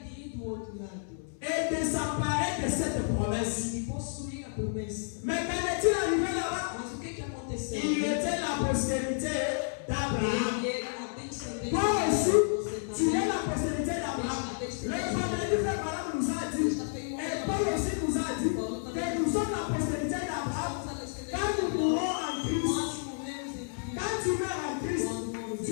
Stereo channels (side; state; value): right; silent; 55 dB below the other